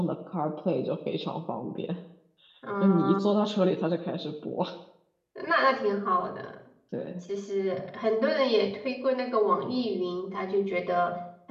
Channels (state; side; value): identical; both; correlation 1.00